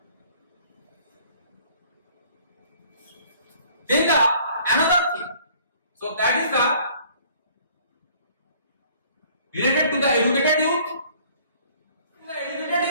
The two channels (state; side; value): inverted; both; correlation -0.56